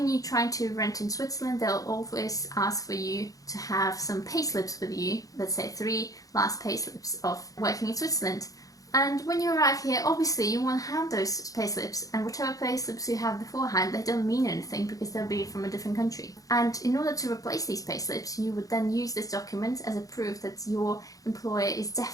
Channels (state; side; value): late; right; 0.17 ms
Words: you're trying to rent in Switzerland, they'll always ask for you to have some payslips with you, let's say 3 last payslips of working in Switzerland. And when you arrive here, obviously you won't have those payslips, and whatever payslips you have beforehand, they don't mean anything because they'll be from a different country. And in order to replace these payslips, you would then use this document as a proof that your employer is